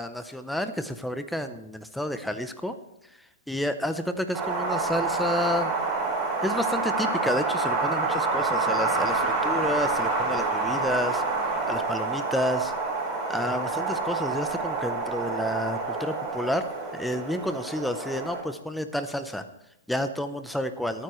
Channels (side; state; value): both; normal; correlation 0.33